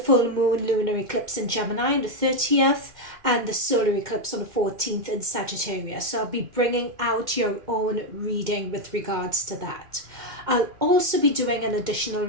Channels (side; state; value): left; late; 2.1 ms